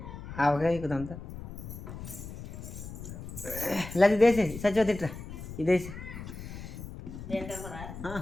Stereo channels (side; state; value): left; noise; rumble, 11 dB below the sound